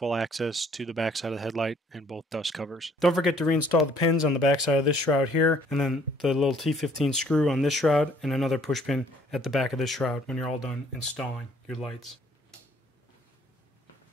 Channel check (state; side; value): normal; both; correlation 0.61